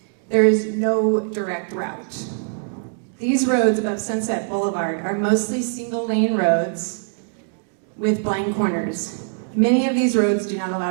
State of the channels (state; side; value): silent; left; digital silence